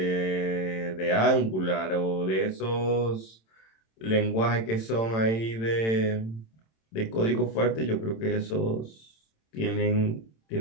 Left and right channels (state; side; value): late; right; 27 ms